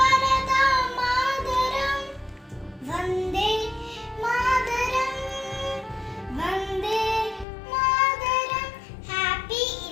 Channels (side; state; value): right; drops out; at 7.5 s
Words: മാതരം. വന്ദേ മാതരം, വന്ദേ മാതരം. Happy